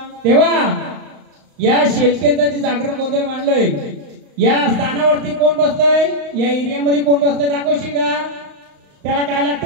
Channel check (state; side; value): late; left; 35 ms